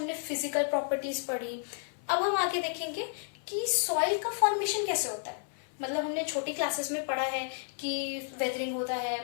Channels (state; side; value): silent; right; 57 dB below the other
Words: फिजिकल प्रॉपर्टीज पढ़ी। अब हम आगे देखेंगे कि सॉइल का फॉर्मेशन कैसे होता है। मतलब हमने छोटी क्लासेस में पढ़ा है कि वेदरिंग होता है,